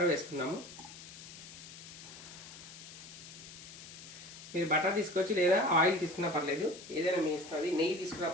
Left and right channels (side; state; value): left; noise; hiss, 15 dB below the sound